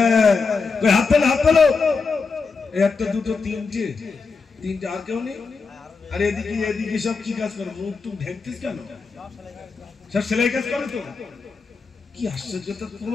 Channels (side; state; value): right; quieter; 4.7 dB